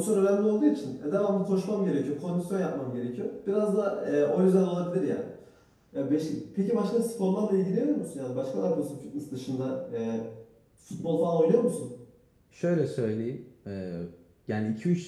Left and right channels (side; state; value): both; identical; correlation 1.00